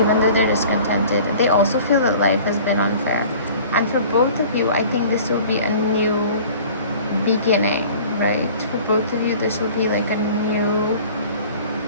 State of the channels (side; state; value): both; inverted; correlation -0.46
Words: even though they're discontented. They also feel that life has been unfair. And for both of you, I think this will be a new beginning, right? For both of you, this will be like a new,